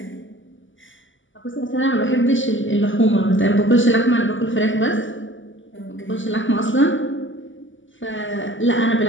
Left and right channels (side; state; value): right; late; 0.56 ms